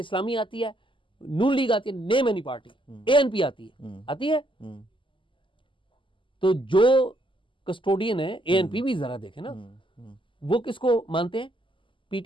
आती है, नून लीग आती है, नेम एनी पार्टी, एएनपी आती है। तो जो कस्टोडियन है, एएनपी भी जरा देखे ना, वो किसको मानते हैं?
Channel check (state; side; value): late; right; 0.25 ms